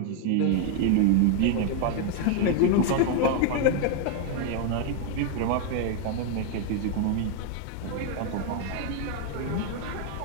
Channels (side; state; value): both; different; correlation 0.00